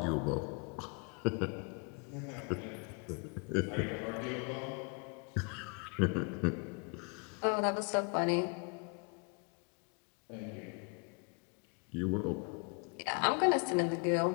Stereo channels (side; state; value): right; quieter; 35.4 dB